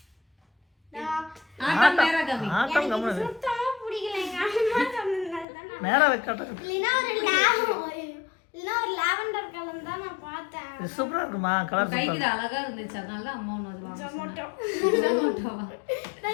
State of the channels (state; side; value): drops out; right; at 5.5 s